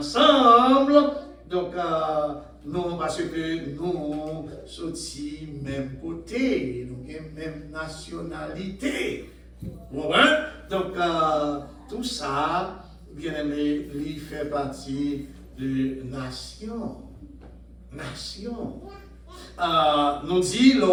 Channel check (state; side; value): identical; both; correlation 1.00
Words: donc nous, parce que nous sommes même côté, nous avons même nationalité. Voilà. Donc tout ça, bien aimé, il fait partie de nation. Nation. Nous dit,